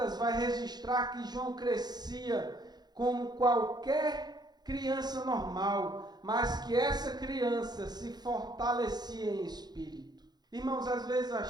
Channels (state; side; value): late; left; 0.20 ms